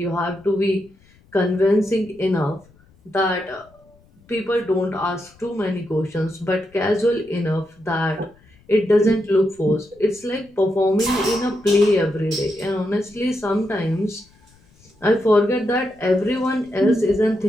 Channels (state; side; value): noise; left; rumble, 30 dB below the sound